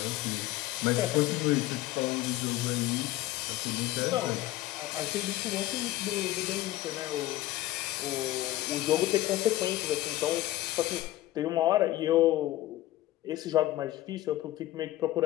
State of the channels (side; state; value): right; quieter; 16.0 dB